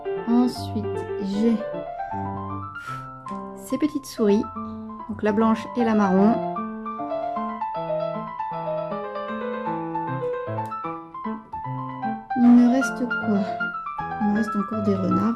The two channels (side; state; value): both; identical; correlation 1.00